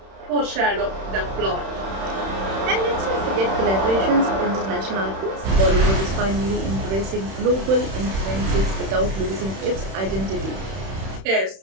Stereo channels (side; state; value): left; late; 31 ms